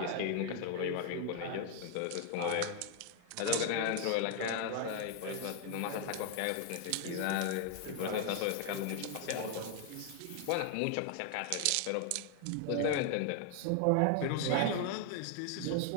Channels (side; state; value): both; different; correlation 0.00